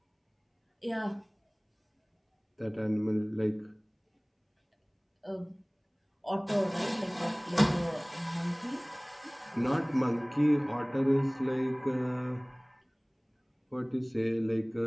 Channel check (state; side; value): identical; both; correlation 1.00